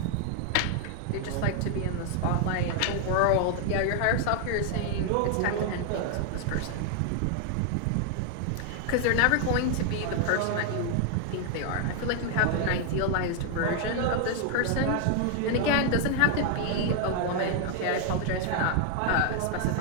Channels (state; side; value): different; both; correlation 0.00